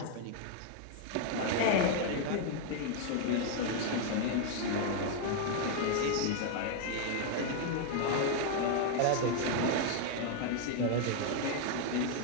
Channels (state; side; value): different; both; correlation 0.00